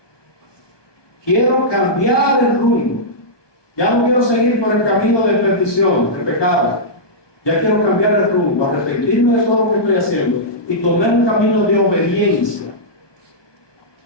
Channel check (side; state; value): right; late; 1.2 ms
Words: Quiero cambiar el rumbo. Ya no quiero seguir por el camino de perdición, de pecado. Ya quiero cambiar el rumbo, arrepentirme de todo lo que estoy haciendo y tomar un camino de obediencia.